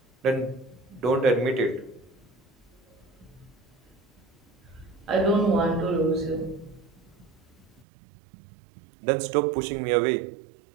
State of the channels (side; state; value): left; drops out; at 7.9 s